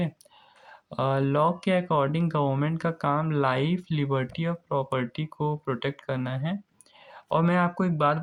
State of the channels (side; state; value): both; identical; correlation 1.00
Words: लॉ के अकॉर्डिंग गवर्नमेंट का काम लाइफ, लिबर्टी और प्रॉपर्टी को प्रोटेक्ट करना है। और मैं आपको एक बात